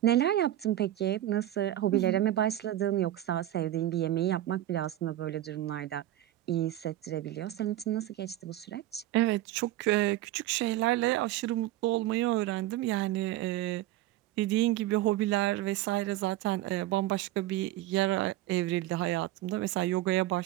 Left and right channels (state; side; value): quieter; left; 14.2 dB